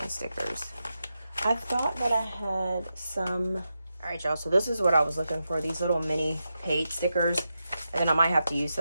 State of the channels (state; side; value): inverted; both; correlation -0.88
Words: stickers. I thought that I had some. All right, y'all, so this is what I was looking for, these little mini paid stickers. And then I might have to use